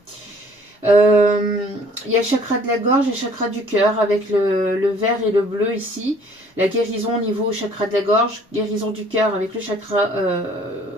Il y a le chakra de la gorge et le chakra du cœur avec le vert et le bleu ici. La guérison au niveau chakra de la gorge, guérison du cœur avec le chakra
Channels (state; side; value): normal; both; correlation 0.56